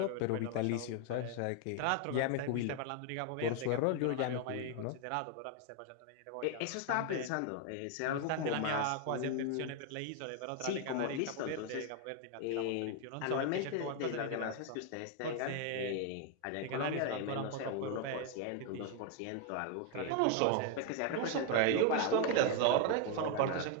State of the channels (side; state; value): both; different; correlation 0.01